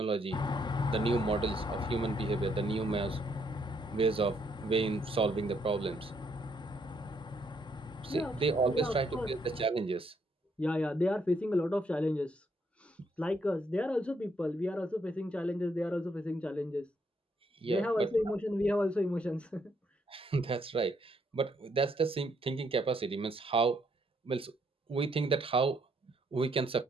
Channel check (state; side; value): normal; both; correlation 0.72